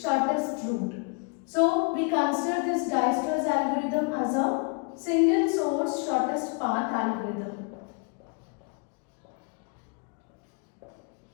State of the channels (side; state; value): right; quieter; 35.0 dB